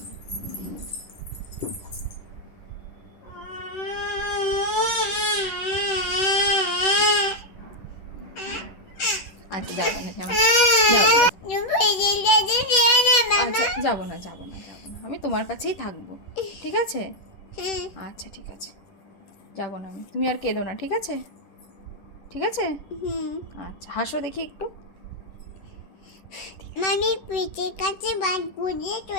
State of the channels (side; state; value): right; late; 10 ms